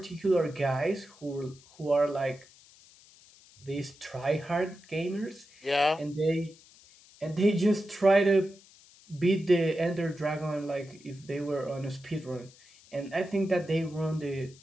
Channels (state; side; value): noise; left; hiss, 25 dB below the sound